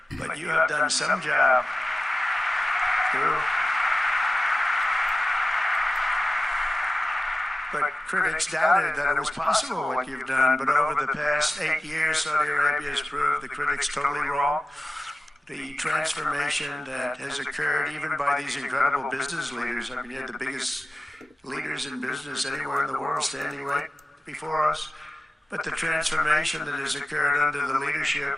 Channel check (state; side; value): normal; both; correlation 0.94